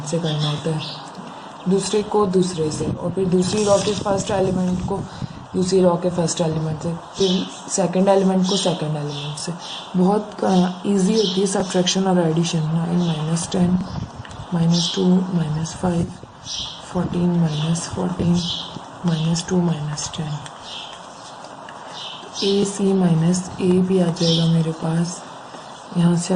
से करना होता है, दूसरे को दूसरे से, और फिर दूसरी रो के फर्स्ट एलिमेंट को दूसरी रो के फर्स्ट एलिमेंट से, फिर सेकंड एलिमेंट को सेकंड एलिमेंट से। बहुत इजी होती है सब्ट्रैक्शन और एडिशन। 9 - 10 -2 -5 14 -14 -2 -10। ए सी माइनस ए भी आ जाएगा मेरे पास। यहाँ से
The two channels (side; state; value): both; identical; correlation 1.00